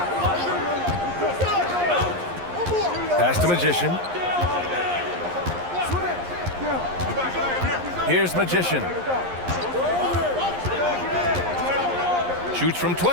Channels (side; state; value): left; late; 11 ms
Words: Pass to Magician. Here's Magician. Shoots from